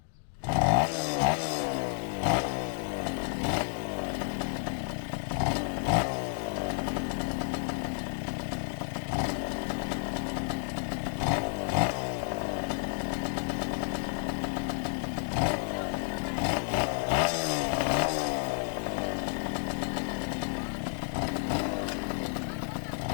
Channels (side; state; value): right; silent; 57 dB below the other